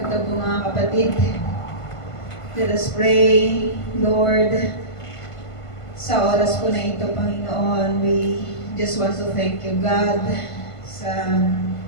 po mga kapatid. Let us pray, Lord. Sa oras po na ito, Panginoon, we just want to thank you, God, sa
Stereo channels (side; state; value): right; late; 1.5 ms